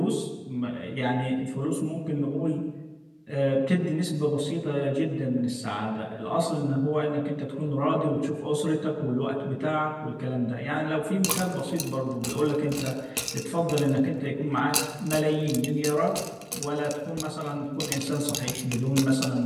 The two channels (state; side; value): identical; both; correlation 1.00